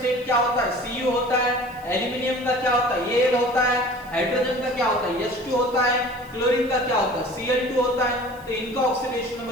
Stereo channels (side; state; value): right; noise; hiss, 26 dB below the sound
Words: क्या होता है, Cu होता है। एल्यूमिनियम का क्या होता है, Al होता है। हाइड्रोजन का क्या होता है, H2 होता है। क्लोरीन का क्या होता है, Cl2 होता है। तो इनका ऑक्सीडेशन